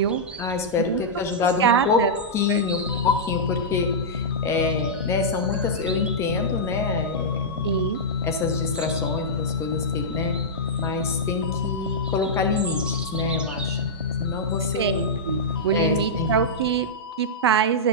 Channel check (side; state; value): both; normal; correlation -0.10